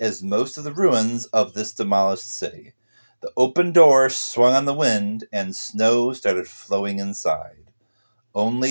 most of the ruins of this demolished city. The open door swung on the wind, and snow started flowing inside.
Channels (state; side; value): inverted; both; correlation -1.00